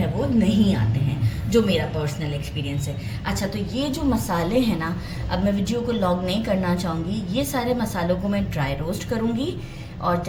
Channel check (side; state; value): both; identical; correlation 1.00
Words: वो नहीं आते हैं, जो मेरा पर्सनल एक्सपीरियंस है। अच्छा, तो ये जो मसाले हैं ना, अब मैं वीडियो को लॉन्ग नहीं करना चाहूँगी। ये सारे मसालों को मैं ड्राई रोस्ट करूँगी और